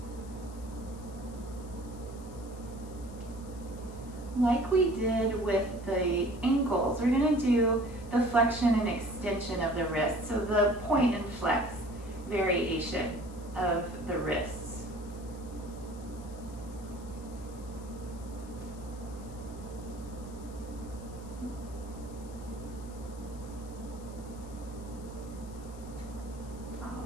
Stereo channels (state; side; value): noise; left; hiss, 22 dB below the sound